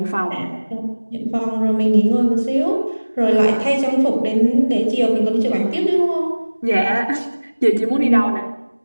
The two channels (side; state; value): both; inverted; correlation -1.00